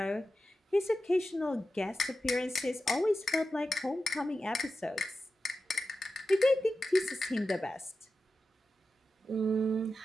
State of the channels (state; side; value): normal; both; correlation 0.92